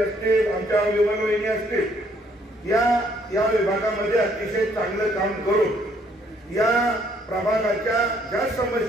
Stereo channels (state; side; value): normal; both; correlation 0.66